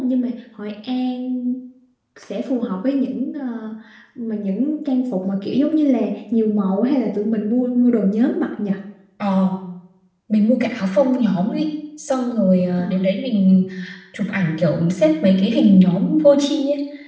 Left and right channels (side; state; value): both; identical; correlation 1.00